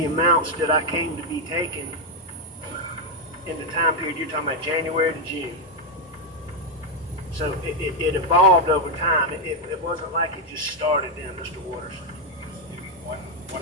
amounts that I came to be taking in the time period you're talking about, January to June. So it evolved over time. It wasn't like it just started then, Mr. Waters. Give me one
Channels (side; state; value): both; normal; correlation 0.02